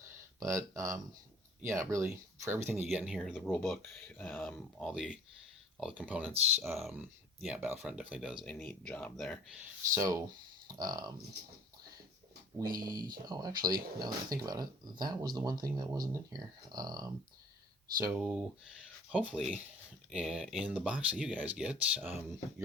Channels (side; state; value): both; normal; correlation 0.51